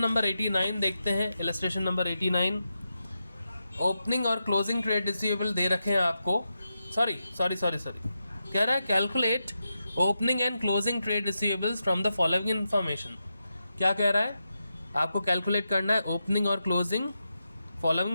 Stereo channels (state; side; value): inverted; both; correlation -0.87